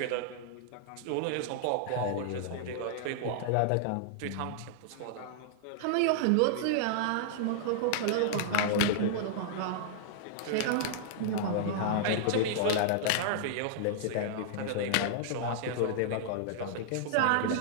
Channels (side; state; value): both; different; correlation -0.01